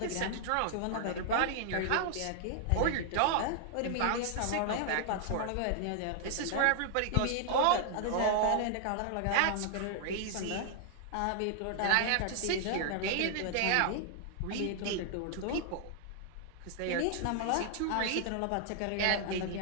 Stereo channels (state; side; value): different; both; correlation 0.00